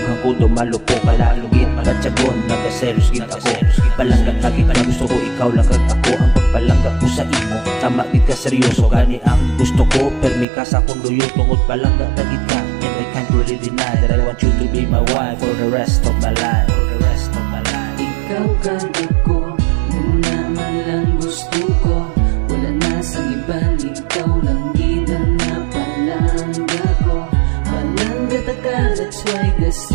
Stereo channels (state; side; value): drops out; left; at 10.5 s